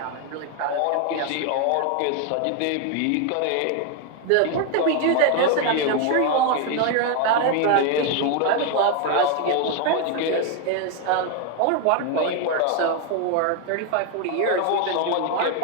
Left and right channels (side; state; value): both; different; correlation 0.01